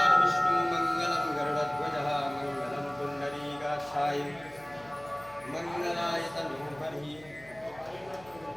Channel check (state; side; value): noise; left; hum, 24 dB below the sound